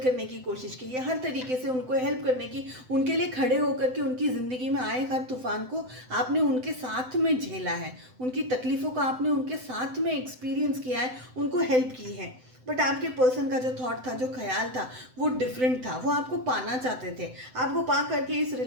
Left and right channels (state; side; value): late; left; 7.9 ms